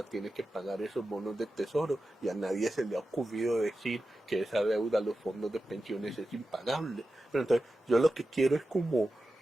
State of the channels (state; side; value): normal; both; correlation 0.92